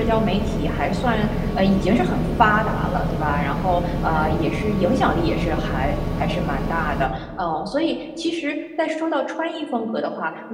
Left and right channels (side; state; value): both; identical; correlation 1.00